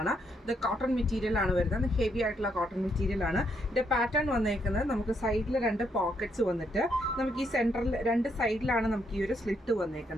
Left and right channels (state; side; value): normal; both; correlation 0.76